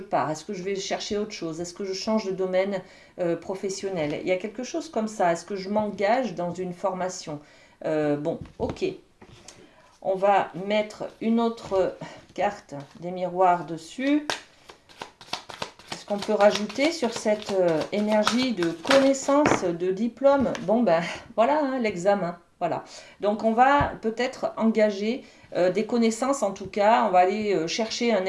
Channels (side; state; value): both; identical; correlation 1.00